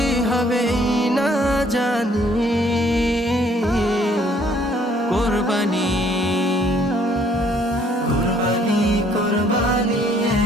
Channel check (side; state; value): both; normal; correlation 0.62